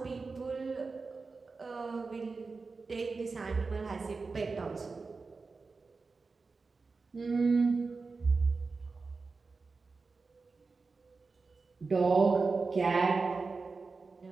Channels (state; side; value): quieter; left; 4.2 dB